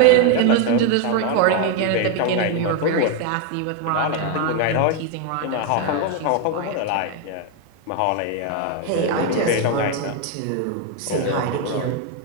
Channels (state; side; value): different; both; correlation 0.01